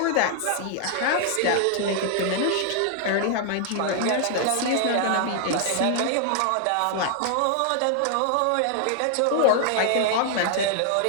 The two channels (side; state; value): both; different; correlation 0.00